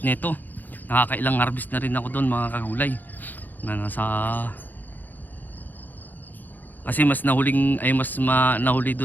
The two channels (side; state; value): right; late; 0.086 ms